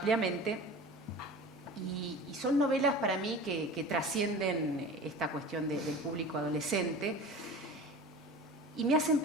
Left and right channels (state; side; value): normal; both; correlation 0.37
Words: Y son novelas para mí que trascienden esta cuestión del público adolescente y me hacen